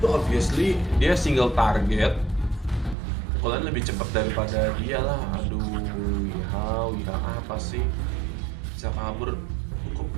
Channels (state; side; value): drops out; left; at 3.0 s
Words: obviously dia single target. Pukulan lebih cepat daripada dia lah. Aduh, Wiha apa sih? Bisa kabur cukup